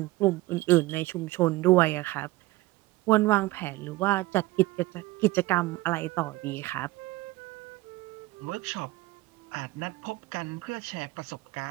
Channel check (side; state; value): left; quieter; 19.2 dB